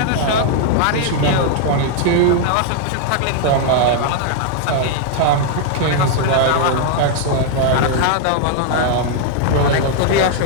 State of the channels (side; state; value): both; different; correlation 0.00